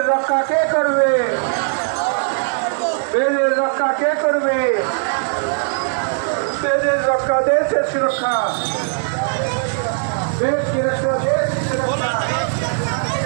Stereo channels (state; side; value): silent; left; digital silence